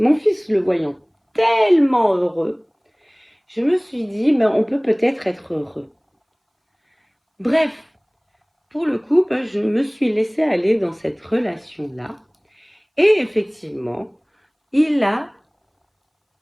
voyant tellement heureux, je me suis dit, ben, on peut peut-être être heureux. Bref, pour le coup, ben, je me suis laissée aller dans cette relation-là. Et effectivement, il a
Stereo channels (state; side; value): identical; both; correlation 1.00